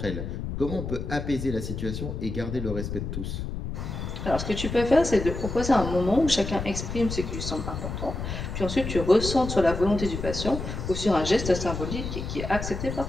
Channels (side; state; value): left; noise; rumble, 5 dB below the sound